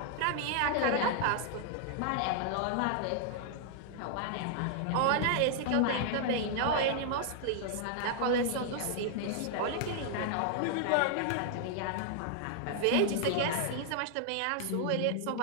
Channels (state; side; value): different; both; correlation 0.00